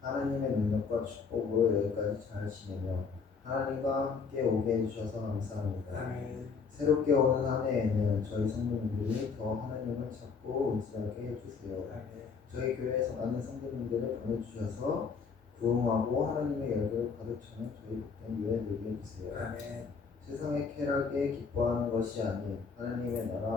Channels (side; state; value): right; quieter; 5.4 dB